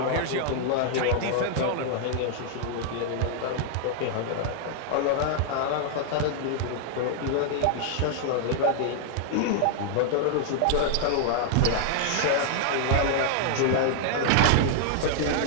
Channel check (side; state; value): both; different; correlation -0.01